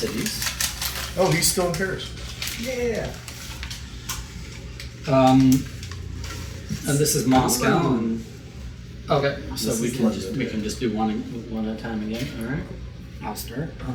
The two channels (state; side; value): identical; both; correlation 1.00